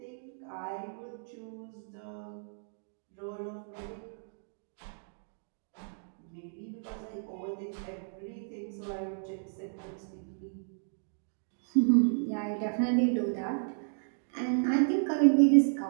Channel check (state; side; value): silent; left; digital silence